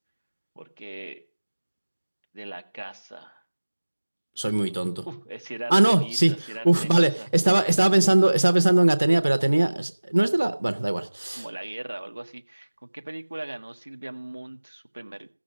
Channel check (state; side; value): inverted; both; correlation -1.00